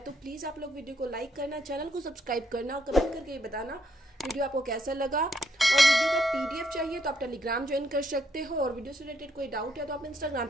तो प्लीज़ आप लोग वीडियो को लाइक करना, चैनल को सब्सक्राइब करना और कमेंट करके ये बताना वीडियो आपको कैसा लगा। और वीडियो का पीडीएफ चाहिए तो आप टेलीग्राम ज्वाइन कर सकते हो, और वीडियो से रिलेटेड कोई डाउट है तो आप इंस्टाग्राम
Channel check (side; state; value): both; normal; correlation 0.73